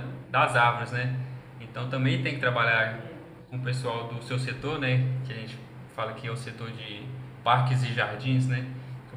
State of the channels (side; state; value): both; identical; correlation 1.00